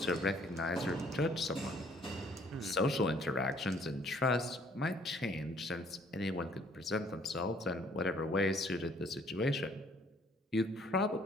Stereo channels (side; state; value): both; normal; correlation 0.61